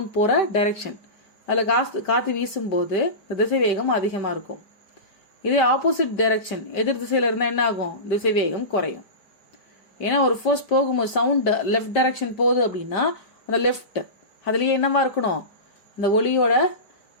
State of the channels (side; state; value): right; late; 5.1 ms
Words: போற டைரக்ஷன், அதுல காத்து வீசும் போது திசைவேகம் அதிகமா இருக்கும். இதே ஆப்போசிட் டைரக்ஷன் எதிர் திசையில இருந்தா என்ன ஆகும், திசைவேகம் குறையும். ஏன்னா ஒரு ஃபோர்ஸ் போகும்போது சவுண்ட் லெஃப்ட் டைரக்ஷன் போகுது அப்படின்னா அந்த லெஃப்ட் அதுலயே என்னவா இருக்கணும், அந்த ஒளியோட